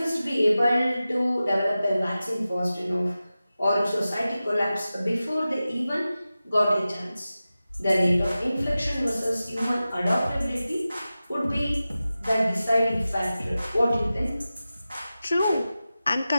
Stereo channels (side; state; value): both; inverted; correlation -0.94